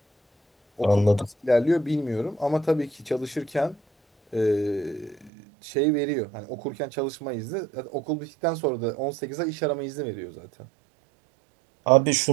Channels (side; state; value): left; drops out; at 5.3 s